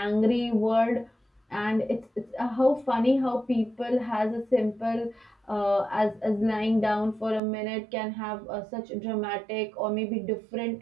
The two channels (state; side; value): drops out; left; at 7.4 s